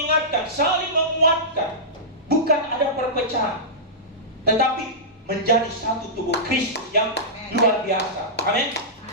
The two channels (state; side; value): normal; both; correlation -0.16